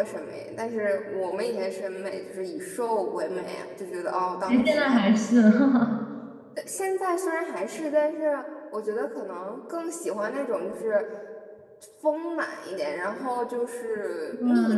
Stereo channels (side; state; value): both; identical; correlation 1.00